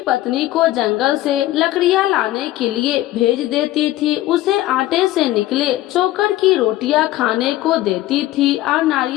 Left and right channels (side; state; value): right; quieter; 15.6 dB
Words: को जंगल से लकड़ियां लाने के लिए भेज देती थी। उसे आटे से निकले चोकर की रोटियां खाने को देती थी और